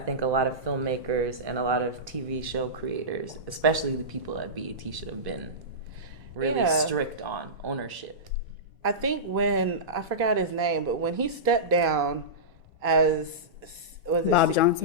a lot of filmmakers and a lot of TV show creators, especially the people at BET, should have been really strict on ownership. I think when, I forgot his name, but when he stepped down as, was it Bob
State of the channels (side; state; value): both; normal; correlation -0.17